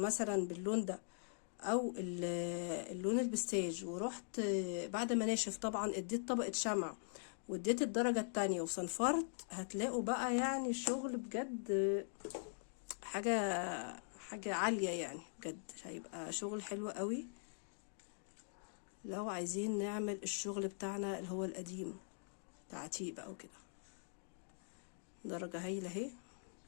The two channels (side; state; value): right; silent; digital silence